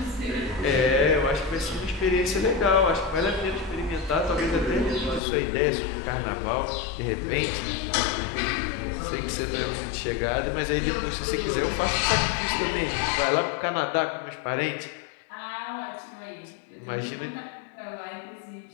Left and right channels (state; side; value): drops out; right; at 5.2 s